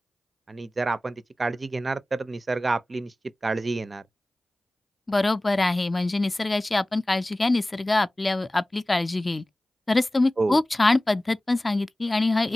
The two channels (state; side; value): normal; both; correlation 0.97